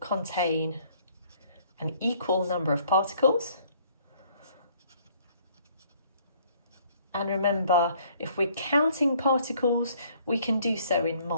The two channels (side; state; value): both; inverted; correlation -0.61